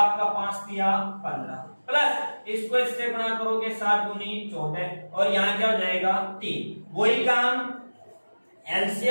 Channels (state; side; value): inverted; both; correlation -1.00